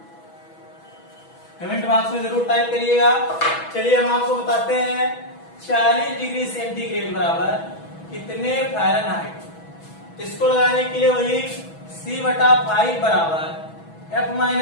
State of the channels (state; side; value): late; right; 6.1 ms